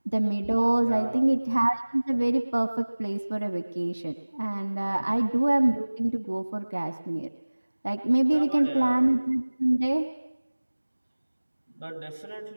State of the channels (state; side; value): inverted; both; correlation -1.00